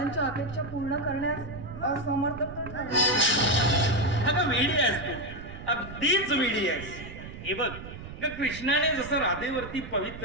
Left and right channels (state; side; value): noise; right; rumble, 12 dB below the sound